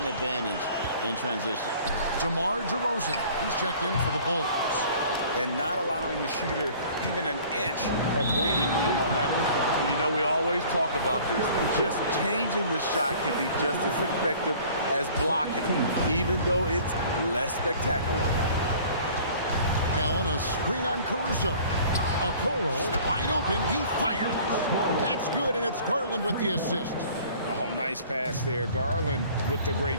advantage in transition. DeMar DeRozan, he's checked in for the Bulls. And not allowing the shooter even an inch of breathing room on that one. And you know, we always talk about this. Just changing the shot can be just as effective as blocking it, even though it's less spectacular. Allen a screen on Caruso. Okoro wide open, he fires. That's good, and it's Garland with the assist. Oh, nice pass there. Garland with the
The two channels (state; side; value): inverted; both; correlation -0.49